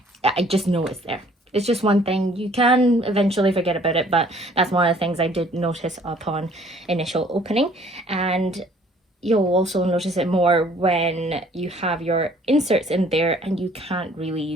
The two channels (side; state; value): both; normal; correlation 0.57